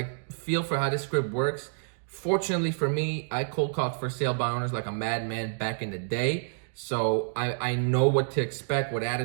for how this script works. Fortunately for me, I cold called for sale by owners like a madman back in the day. So I know what to expect, what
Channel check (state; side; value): silent; left; digital silence